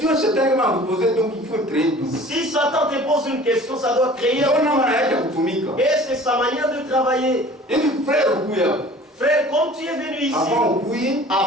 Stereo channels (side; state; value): both; normal; correlation 0.46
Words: Si Satan te pose une question, ça doit créer et c'est sa manière de travailler. Frère, comme tu es venu ici,